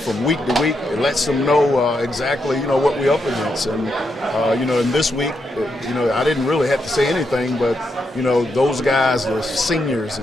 week to week, it lets them know exactly, what we're up against. And, in this week, I didn't really have to say anything, but, those guys, the seniors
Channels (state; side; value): normal; both; correlation 0.82